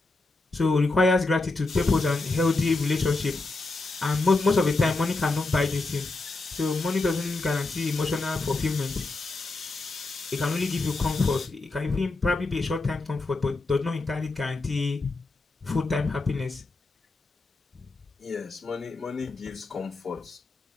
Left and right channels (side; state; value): right; quieter; 3.3 dB